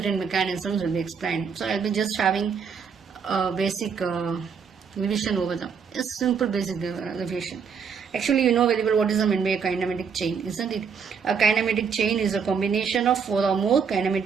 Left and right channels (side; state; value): left; quieter; 6.3 dB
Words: mechanisms will be explained. So I'll be just having a basic revision over them. A simple basic revision. Actually, you know very well what is meant by a kinematic chain, isn't it? A kinematic chain is a combination of 4 or more